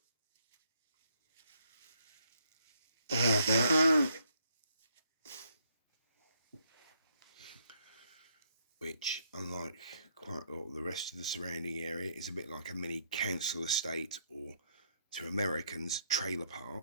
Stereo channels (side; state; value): both; inverted; correlation -0.72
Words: which, unlike quite a lot of the rest of the surrounding area, is a bit like a mini council estate, or to Americans, trailer